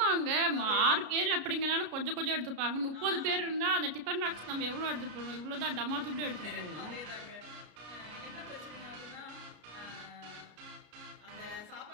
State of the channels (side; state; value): left; late; 33 ms